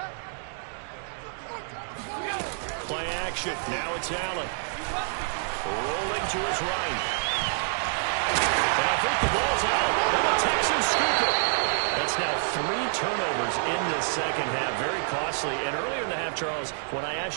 Play action. Now it's Allen. Rolling to his right. And I think the ball's out, and the Texans scoop it. That's now 3 turnovers in the second half. Very costly. And earlier in the half, Charles, when I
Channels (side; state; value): left; silent; digital silence